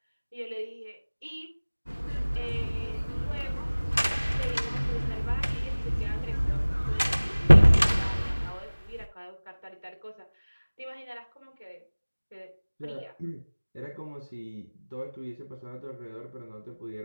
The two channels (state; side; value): inverted; both; correlation -1.00